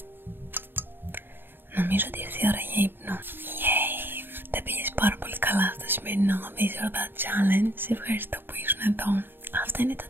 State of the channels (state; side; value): late; left; 0.098 ms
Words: Νομίζω ότι ήρθε η ώρα για ύπνο. Yay! Τα πήγες πάρα πολύ καλά στο σημερινό This or That Challenge. Σε ευχαριστώ που ήσουν εδώ. Αυτό είναι το